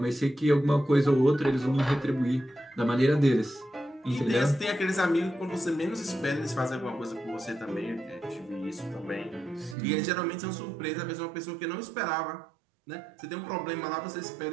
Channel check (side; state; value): left; drops out; at 9.8 s